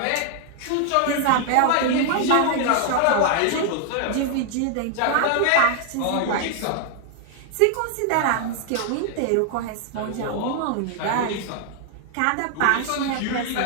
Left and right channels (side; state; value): both; different; correlation 0.00